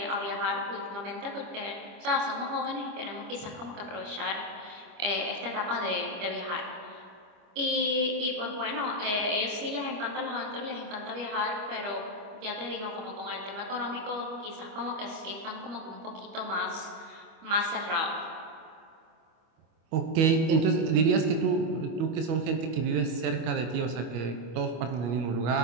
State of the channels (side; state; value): left; late; 25 ms